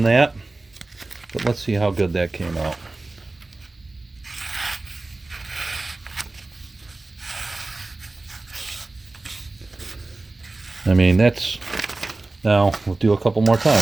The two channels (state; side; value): quieter; left; 3.2 dB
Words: that, but let's see how good that came out. I mean, that's, now we'll do a couple more